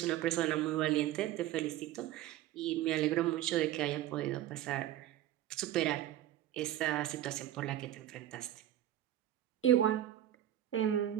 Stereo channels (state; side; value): quieter; left; 12.6 dB